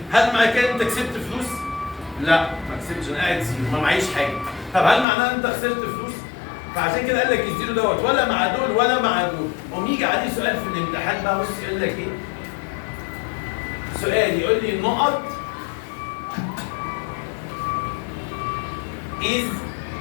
هل معنى كده انت كسبت فلوس؟ لا ما كسبتش، انا قاعد زيرو ما معيش حاجه. طب هل معناه ان انت خسرت فلوس؟ فعشان كده قال لك الزيرو دوت ولا مع دول ولا مع دول. قوم يجي عليه سؤال في الامتحان بقى، بص يقول لك ايه؟ سؤال يقول لي نقط is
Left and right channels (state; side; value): drops out; right; at 5.1 s